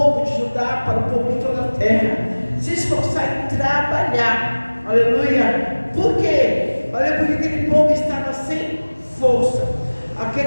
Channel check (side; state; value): both; inverted; correlation -1.00